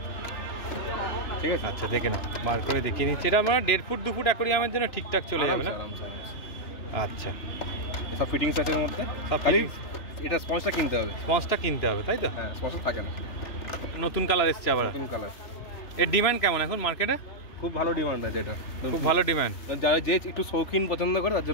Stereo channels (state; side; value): late; right; 3.0 ms